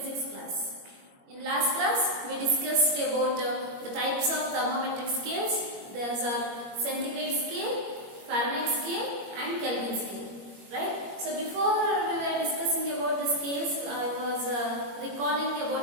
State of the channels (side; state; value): left; late; 21 ms